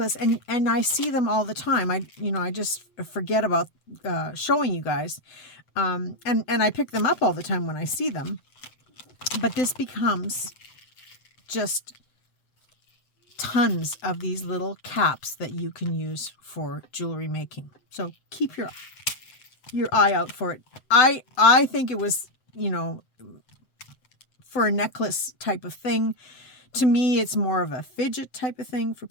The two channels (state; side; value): late; right; 7.8 ms